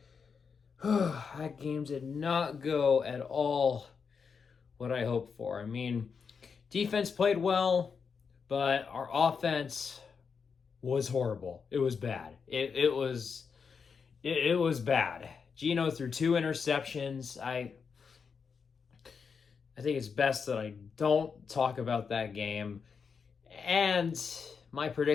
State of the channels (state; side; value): quieter; right; 5.9 dB